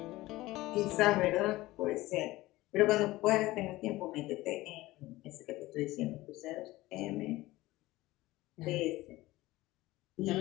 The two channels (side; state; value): right; quieter; 18.3 dB